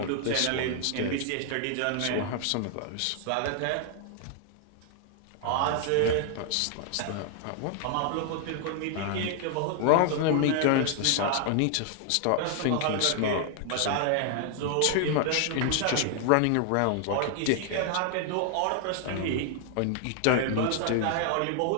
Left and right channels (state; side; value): different; both; correlation 0.00